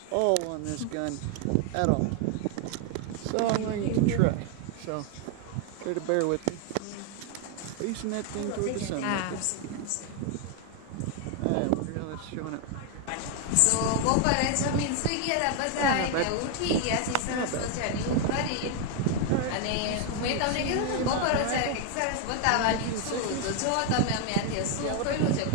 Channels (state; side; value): different; both; correlation 0.01